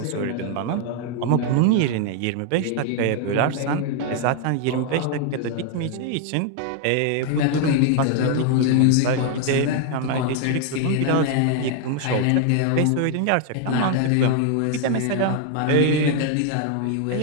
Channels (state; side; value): different; both; correlation 0.00